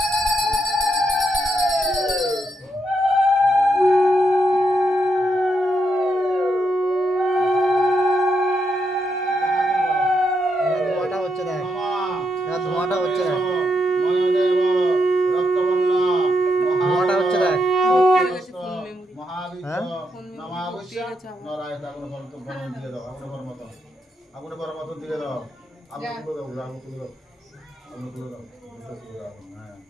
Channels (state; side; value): normal; both; correlation 0.81